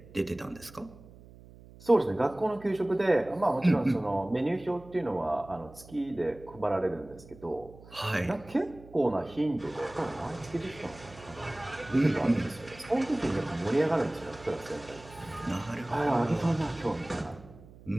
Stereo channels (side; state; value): right; noise; hum, 20 dB below the sound